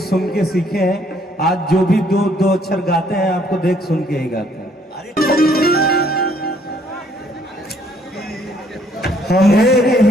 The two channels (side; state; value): both; normal; correlation 0.65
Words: सुन के सीखे हैं। आज जो भी दो अक्षर गाते हैं आपको देख सुन के ही गाते हैं।